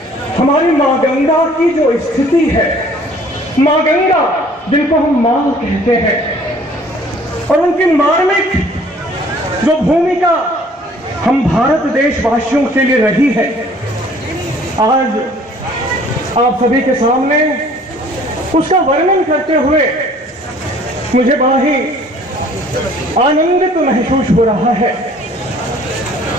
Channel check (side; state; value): both; normal; correlation 0.54